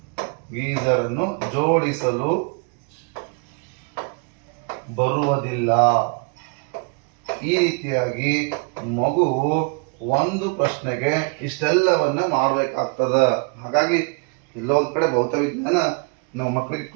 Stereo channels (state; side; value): quieter; left; 34.2 dB